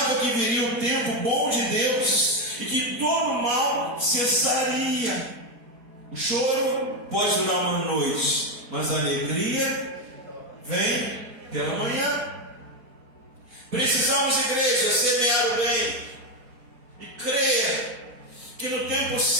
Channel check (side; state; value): left; late; 4.1 ms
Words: que viria o tempo bom de Deus e que todo o mal cessaria. O choro pode durar uma noite, mas a alegria vem pela manhã. Precisamos, igreja, semear o bem e crer que no tempo